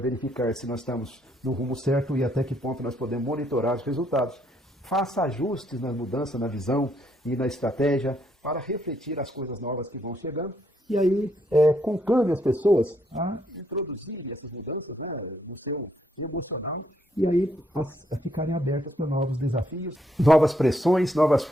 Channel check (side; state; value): both; normal; correlation 0.72